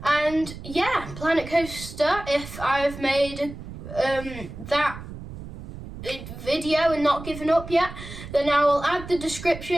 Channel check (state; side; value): noise; right; rumble, 12 dB below the sound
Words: And yeah, Planet Coaster, if I've made that video and not given up yet, then I will add the